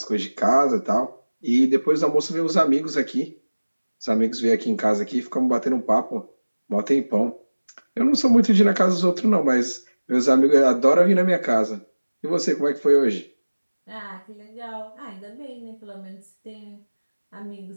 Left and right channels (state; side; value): inverted; both; correlation -1.00